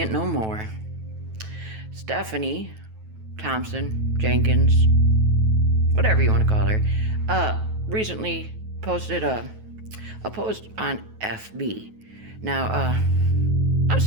no more. Stephanie Thompson, Jenkins, whatever you want to call her, recently posted a post on FB. Now, I'm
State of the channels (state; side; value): late; left; 9.2 ms